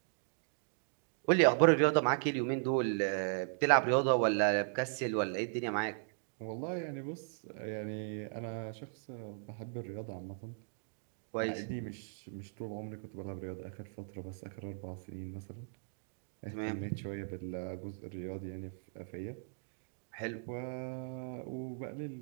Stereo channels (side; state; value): left; silent; digital silence